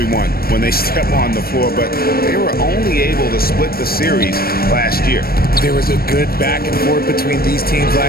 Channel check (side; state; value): right; late; 0.44 ms